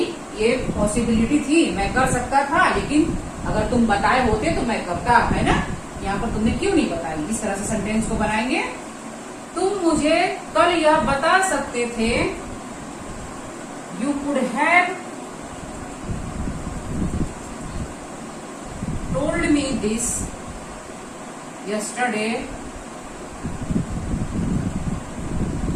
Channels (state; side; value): identical; both; correlation 1.00